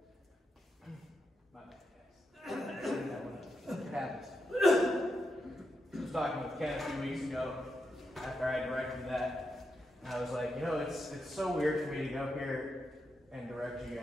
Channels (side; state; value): both; normal; correlation 0.85